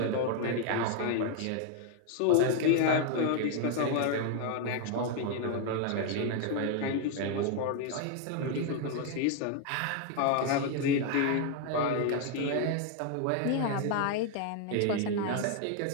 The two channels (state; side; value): different; both; correlation 0.00